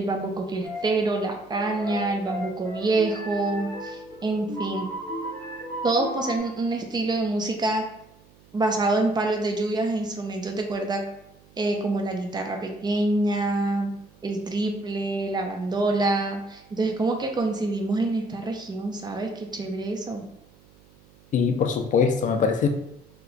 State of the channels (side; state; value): right; noise; hum, 27 dB below the sound